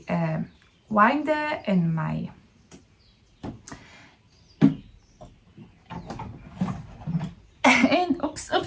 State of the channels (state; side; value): identical; both; correlation 1.00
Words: winder and my and oops,